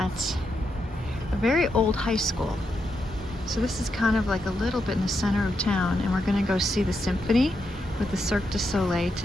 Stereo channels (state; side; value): normal; both; correlation 0.83